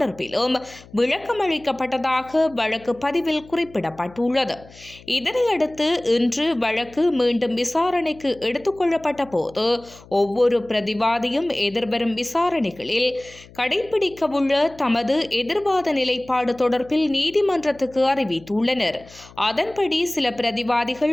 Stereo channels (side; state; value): left; noise; hum, 22 dB below the sound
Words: விளக்கமளிக்கப்பட்டதாக வழக்கு பதிவில் குறிப்பிடப்பட்டுள்ளது. இதனையடுத்து இன்று வழக்கு மீண்டும் விசாரணைக்கு எடுத்துக் கொள்ளப்பட்ட போது ஒவ்வொரு பிரதிவாதியும் எதிர்வரும் விசாரணைகளில் கடைபிடிக்கவுள்ள தமது எதிர்வாத நிலைப்பாடு தொடர்பில் நீதிமன்றத்துக்கு அறிவித்துள்ளனர். அதன்படி சில